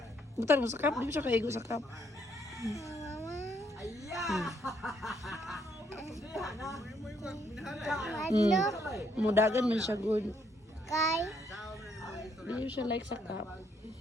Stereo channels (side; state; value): both; normal; correlation 0.71